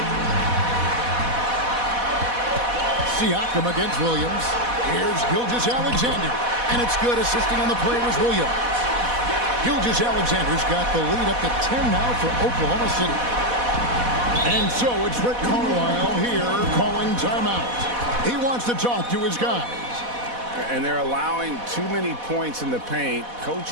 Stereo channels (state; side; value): late; left; 4.1 ms